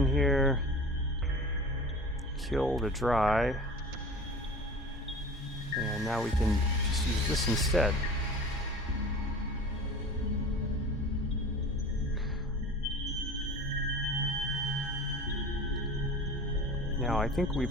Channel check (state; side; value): normal; both; correlation 0.38